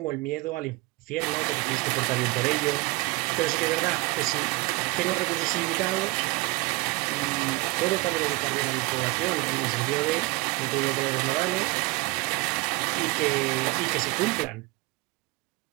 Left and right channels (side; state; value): left; quieter; 23.2 dB